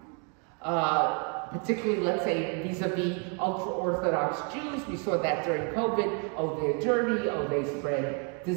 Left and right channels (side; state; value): left; quieter; 37.9 dB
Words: particularly, let's say, vis-a-vis ultra-Orthodox Jews. We saw that during COVID. Oh, they're dirty. Oh, they spread